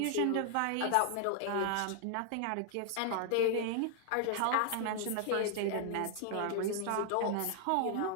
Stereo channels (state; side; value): different; both; correlation 0.00